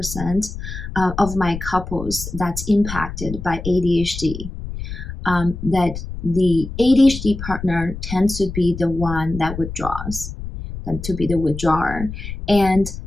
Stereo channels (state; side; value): noise; left; rumble, 9 dB below the sound